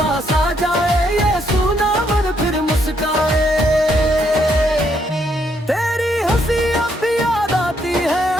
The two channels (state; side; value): normal; both; correlation 0.73